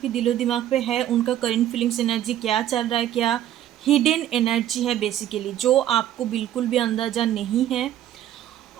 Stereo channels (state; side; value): quieter; left; 11.9 dB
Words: दिलो दिमाग पे है उनका करंट फीलिंग्स एनर्जी क्या चल रहा है, क्या हिडन एनर्जी है बेसिकली जो आपको बिल्कुल भी अंदाज़ा नहीं है,